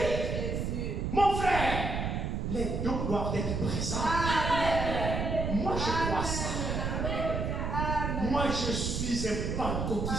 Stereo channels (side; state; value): right; noise; rumble, 1 dB below the sound